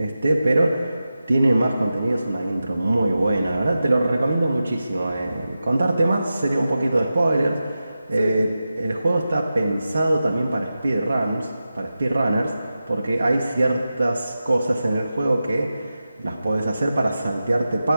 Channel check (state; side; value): inverted; both; correlation -0.92